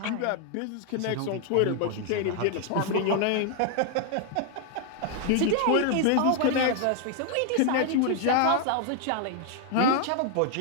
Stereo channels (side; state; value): both; different; correlation 0.00